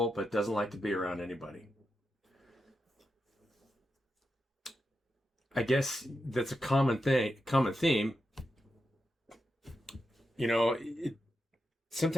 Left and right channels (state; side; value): normal; both; correlation 0.88